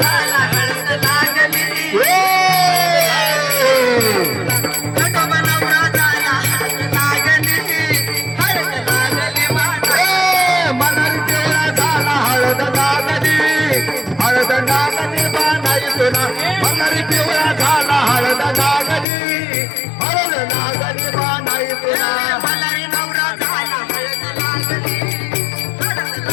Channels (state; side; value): drops out; right; at 19.1 s